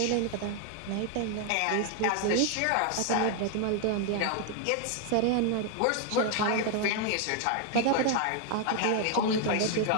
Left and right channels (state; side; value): different; both; correlation 0.00